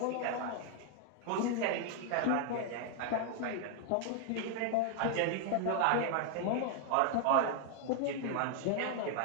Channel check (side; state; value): both; different; correlation 0.00